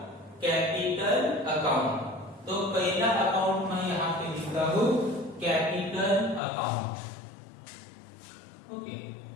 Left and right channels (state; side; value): drops out; right; at 6.4 s